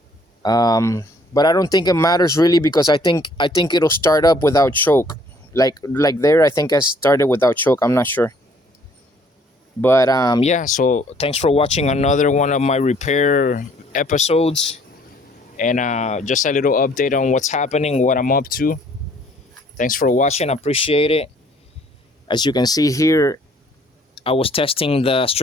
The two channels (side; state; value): both; normal; correlation 0.61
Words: But I don't think it matters really, because I think it'll start up without choke. Like there, I think I started without choke. I'm not sure. But yeah. So thanks for watching another one of my repair episodes, and just a little update on what's happening, what I'm up to. Thanks for watching. I appreciate it. As you can see here, I was testing the